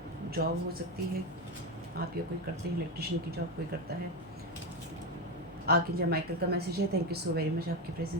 जॉब हो सकती है, आप या कोई करते हैं, इलेक्ट्रिशियन की जॉब कोई करता है। आर्कएंजल माइकल का मैसेज है, thank you so very much आपके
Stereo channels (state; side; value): normal; both; correlation 0.12